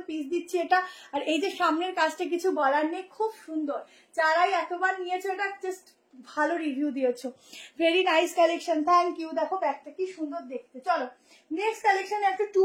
পিস দিচ্ছি এটা। আর এই যে সামনের কাজটা কিছু বলার নেই, খুব সুন্দর, যারাই এতবার নিয়েছো এটা জাস্ট ভালো রিভিউ দিয়েছো, very nice collection, thank you. দেখো ব্যাগটা কি সুন্দর দেখতে। চলো নেক্সট কালেকশনে একটা 2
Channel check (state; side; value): identical; both; correlation 1.00